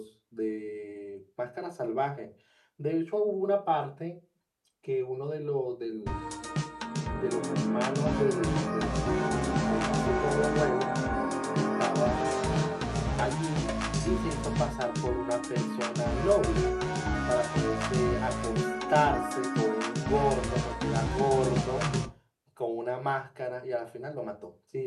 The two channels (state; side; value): identical; both; correlation 1.00